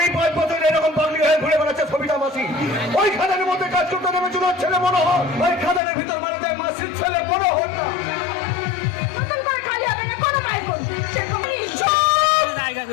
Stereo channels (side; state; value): right; drops out; at 5.8 s